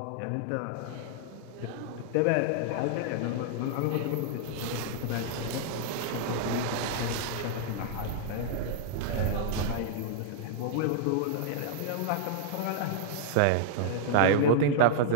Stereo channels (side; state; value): both; different; correlation -0.01